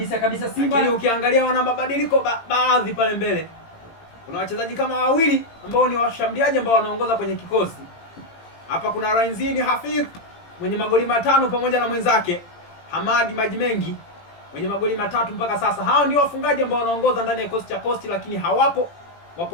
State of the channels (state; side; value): late; right; 18 ms